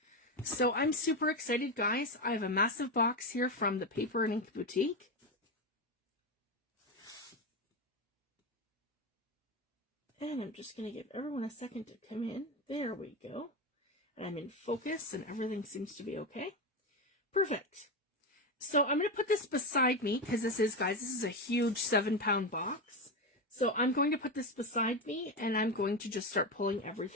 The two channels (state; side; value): normal; both; correlation 0.14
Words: So I'm super excited, guys. I have a massive box here from the Paper and Ink Boutique. And I'm just going to give everyone a second to come in. There we go. And I'm in focus and everything seems to be okay. Perfect. So I'm going to put this beside me because this is a huge 7-pound box. So I'm going to put this beside me and I'm going to just start pulling